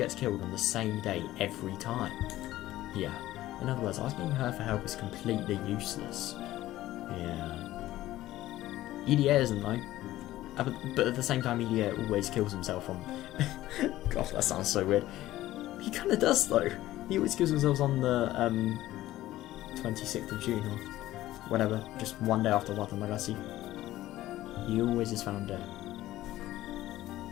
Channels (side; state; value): right; quieter; 15.3 dB